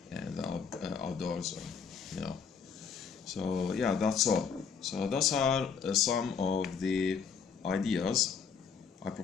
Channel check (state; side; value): quieter; right; 6.3 dB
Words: outdoors, or, you know. So yeah, that's all. So those are some of the ideas I